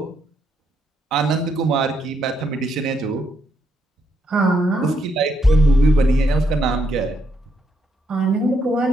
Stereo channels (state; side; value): normal; both; correlation 0.77